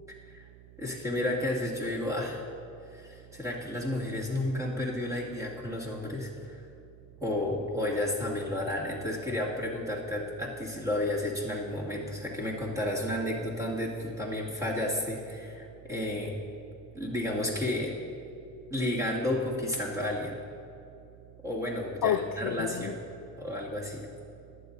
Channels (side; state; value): right; noise; hum, 18 dB below the sound